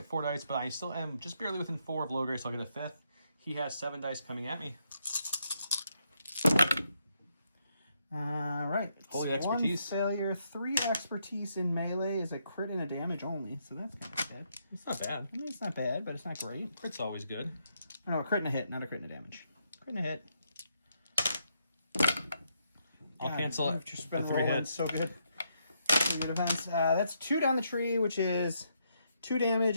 4 dice, but I still am just barely within 4 of Logray, so I'll get a 5th. He has 7 dice coming at me. All right. Holy expertise. 1 failure, 3 expertise in melee is a crit and a damage only, so that's kind of bad. It's not bad. I mean, it's not bad, but it's not great. Crit's always good. No, a crit and a hit, not a crit and a damage. Crit and a hit. I'll cancel it. You've just been the 3 rolling hits. so good. 3 good defense. That's 2 down the tree, which is 2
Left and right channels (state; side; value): inverted; both; correlation -0.77